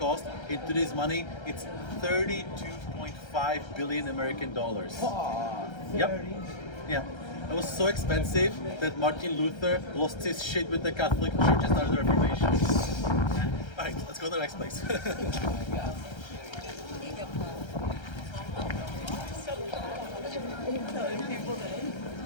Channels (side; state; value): right; late; 1.3 ms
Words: In today's money, it's 32.5 billion American dollars. Yep. Yeah. It was so expensive that Martin Luther lost his shit with the Catholic Church and started the Reformation. Alright, let's go to the next place.